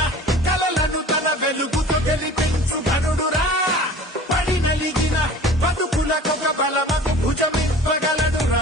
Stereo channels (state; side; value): normal; both; correlation 0.43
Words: కలలను తన వెలుగుతో గెలిపించు ఘనుడురా పడి నలిగిన బతుకులకొక బలమకు